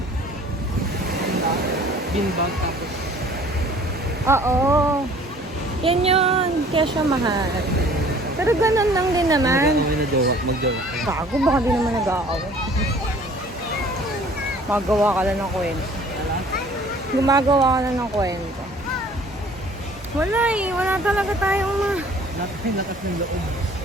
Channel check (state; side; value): normal; both; correlation 0.52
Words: Beanbag tapos. Oo. Yan yun. Kaya siya mahal. Pero ganun lang din naman. Kami na mag-jowa. Bago, baka di naman nag-aaway. Magawa ka lang ng kwento. Gumagawa ka lang ng kwento. Wala eh. Wala talaga tayong Lakas ng loob.